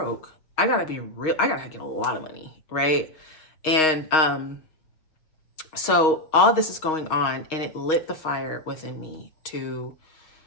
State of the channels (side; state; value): right; late; 6.4 ms